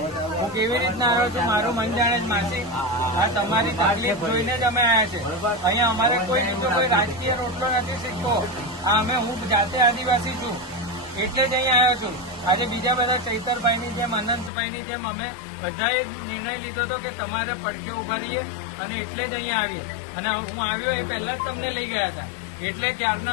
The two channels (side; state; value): right; drops out; at 14.5 s